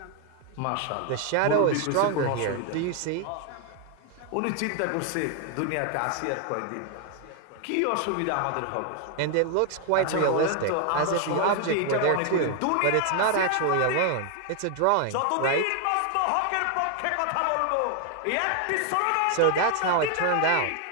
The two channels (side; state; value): both; different; correlation 0.00